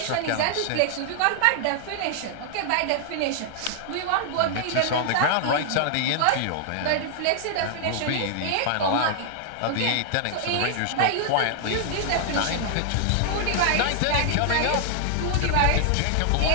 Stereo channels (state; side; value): different; both; correlation -0.01